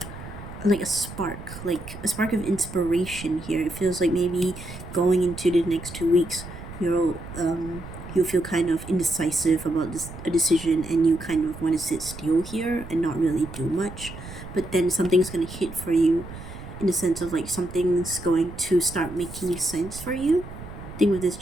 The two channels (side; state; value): right; noise; rumble, 13 dB below the sound